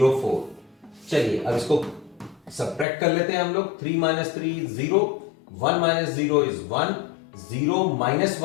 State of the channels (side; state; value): right; drops out; at 2.9 s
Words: 4। चलिए अब इसको सब्ट्रैक्ट कर लेते हैं हम लोग। 3 minus 3 0, 1 minus 0 is 1, 0 minus